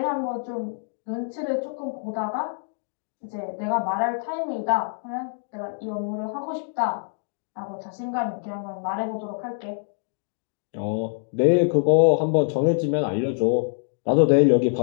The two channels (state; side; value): silent; right; digital silence